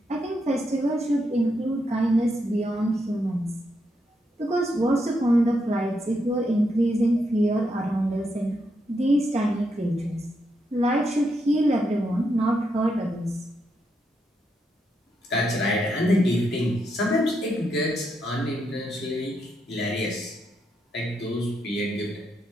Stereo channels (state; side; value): normal; both; correlation 0.81